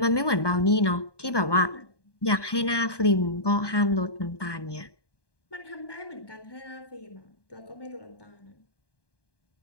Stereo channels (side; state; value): right; late; 1.2 ms